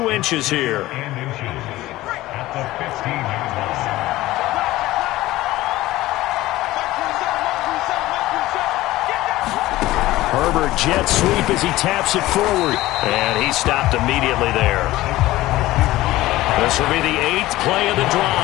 inches here. Herbert jet sweep as he taps it forward. And he stopped immediately there. This will be the 8th play of the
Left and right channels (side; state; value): right; quieter; 17.1 dB